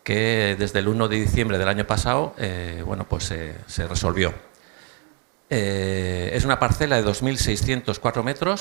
que desde el 1 de diciembre del año pasado se resolvió. Es una parcela de 2.604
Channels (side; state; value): left; quieter; 35.6 dB